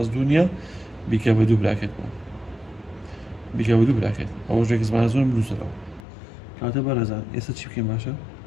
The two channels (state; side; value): drops out; right; at 6.1 s